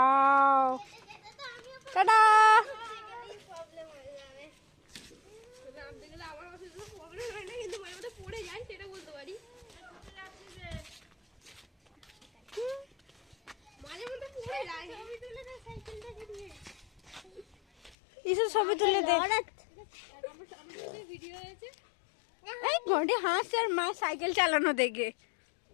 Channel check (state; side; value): drops out; right; at 17.9 s